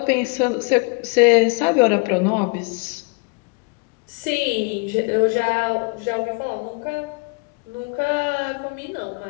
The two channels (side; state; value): right; quieter; 32.2 dB